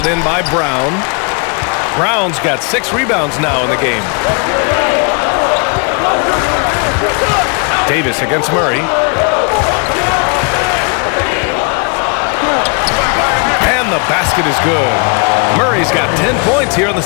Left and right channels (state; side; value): quieter; right; 35.0 dB